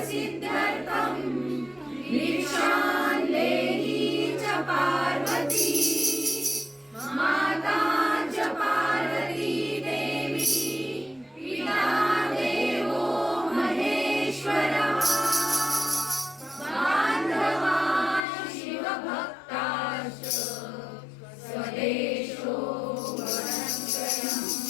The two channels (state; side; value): drops out; right; at 18.2 s